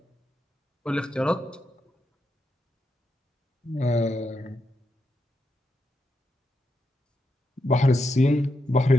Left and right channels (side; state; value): both; normal; correlation 0.84